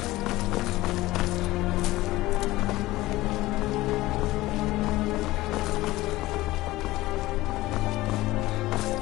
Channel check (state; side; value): quieter; right; 18.1 dB